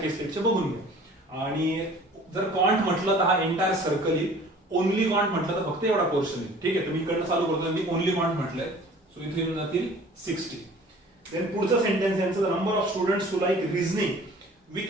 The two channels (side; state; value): both; normal; correlation 0.48